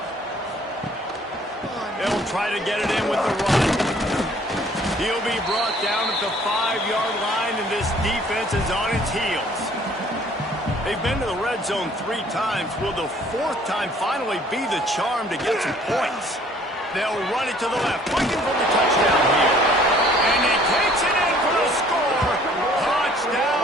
They'll try to get it in with the run. He'll be brought down at the 5-yard line, and this defense is on its heels. They've been to the red zone 3 times. Will the 4th time finally be the charm to get some points? They'll run it to the left, looking for the touchdown here. And he takes it in for the score.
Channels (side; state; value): both; normal; correlation 0.57